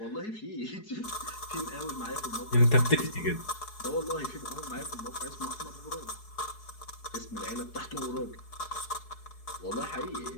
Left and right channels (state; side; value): late; right; 4.7 ms